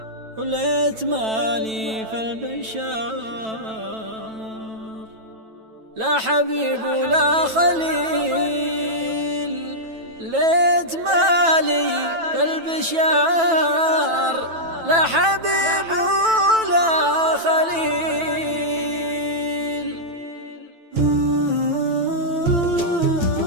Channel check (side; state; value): left; late; 9.1 ms